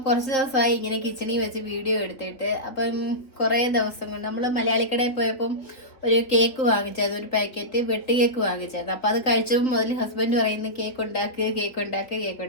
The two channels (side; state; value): right; late; 3.6 ms